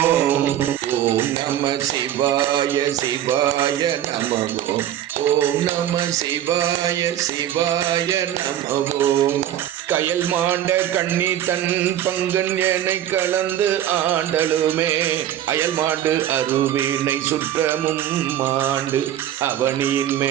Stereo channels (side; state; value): left; quieter; 11.4 dB